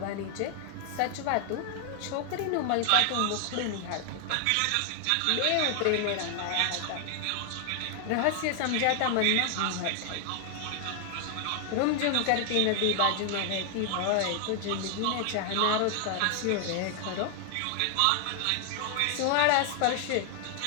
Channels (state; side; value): different; both; correlation 0.00